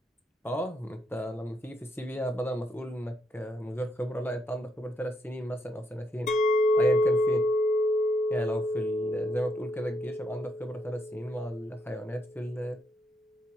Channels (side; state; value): both; normal; correlation 0.75